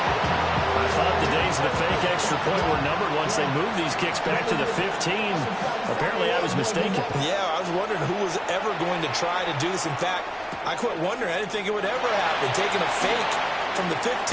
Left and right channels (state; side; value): identical; both; correlation 1.00